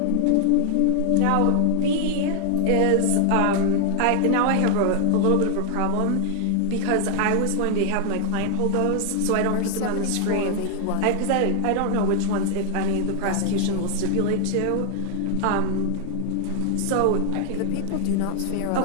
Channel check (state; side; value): different; both; correlation 0.00